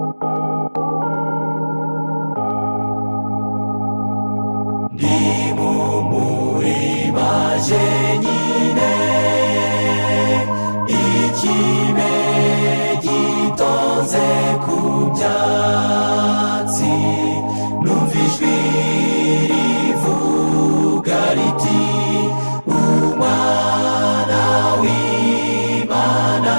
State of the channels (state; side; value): inverted; both; correlation -1.00